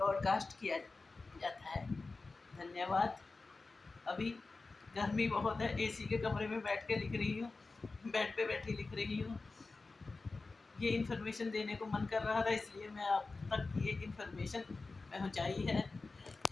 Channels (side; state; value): right; quieter; 3.7 dB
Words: किया जाता है। धन्यवाद। अभी गर्मी बहुत है, एसी के कमरे में बैठ के लिख रही हूँ, बेड पे बैठी लिख रही हूँ। ये इन्फॉर्मेशन देने को मन कर रहा था, इसलिए मैं आप तक ये इन्फॉर्मेशन पहुँचाई